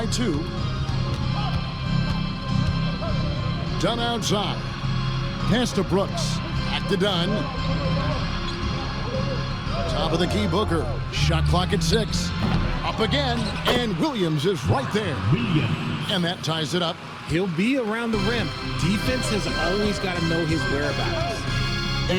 2. Dunn outside. Pass to Brooks. Back to Dunn. Top of the key, Booker. Shot clock at 6. Up again, and Williams is right there. And that ties it up. He'll be around the rim. Defense has always got to know his whereabouts.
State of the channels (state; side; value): identical; both; correlation 1.00